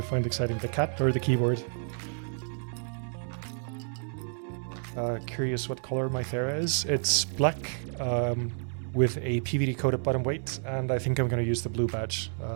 find exciting? The cat or the keyboard? Curious what color my Thera is. It's black with a PVD coated bottom weight, and I think I'm gonna use the blue badge.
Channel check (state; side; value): silent; left; 55 dB below the other